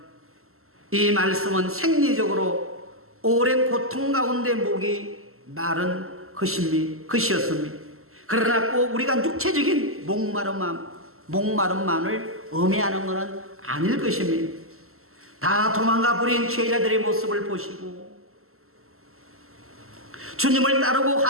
이 말씀은 생리적으로 오랜 고통 가운데 목이 마른 것이었습니다. 그러나 꼭 우리가 육체적인 목마름만을 의미하는 것은 아닐 것입니다. 다 도망가 버린 제자들의 모습을 보시고 주님을 따르고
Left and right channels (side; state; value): left; late; 0.62 ms